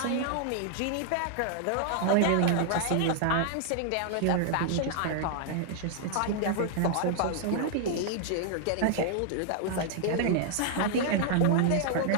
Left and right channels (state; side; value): different; both; correlation 0.00